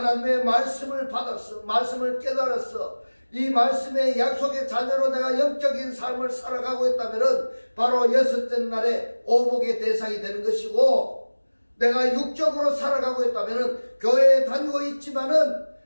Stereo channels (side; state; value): both; inverted; correlation -1.00